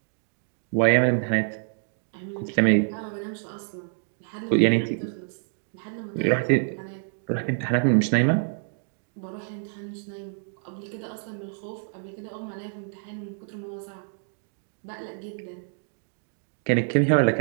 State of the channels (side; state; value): left; silent; digital silence